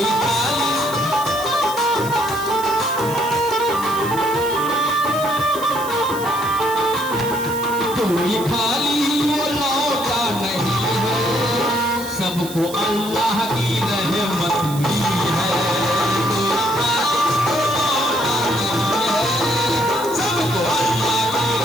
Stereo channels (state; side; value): noise; right; hiss, 13 dB below the sound